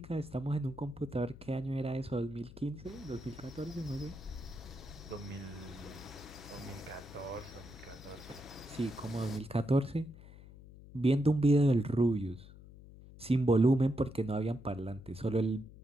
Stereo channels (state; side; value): noise; left; hum, 18 dB below the sound